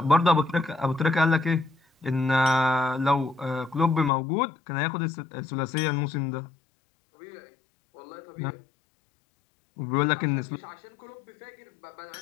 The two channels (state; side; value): drops out; right; at 4.1 s